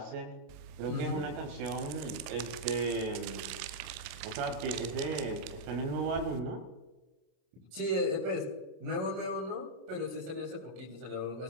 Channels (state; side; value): late; left; 30 ms